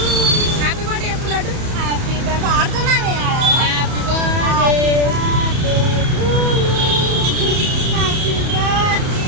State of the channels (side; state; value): left; late; 31 ms